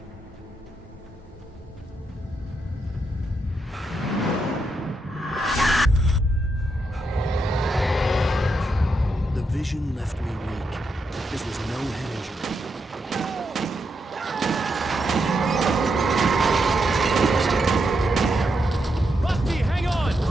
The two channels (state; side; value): normal; both; correlation 0.82